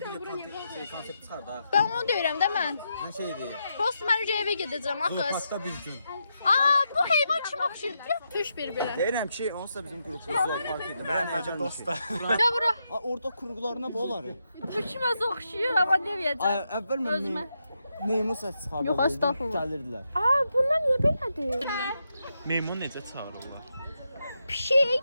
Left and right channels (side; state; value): both; inverted; correlation -0.84